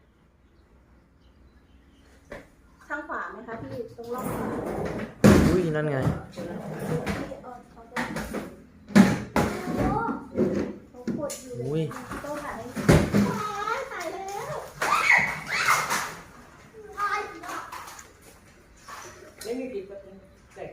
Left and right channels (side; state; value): both; identical; correlation 1.00